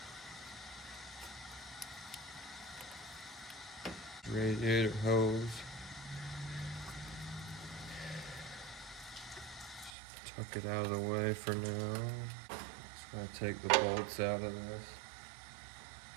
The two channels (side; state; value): left; drops out; at 9.9 s